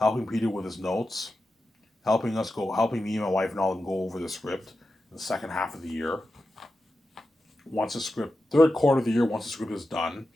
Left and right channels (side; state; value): both; normal; correlation 0.91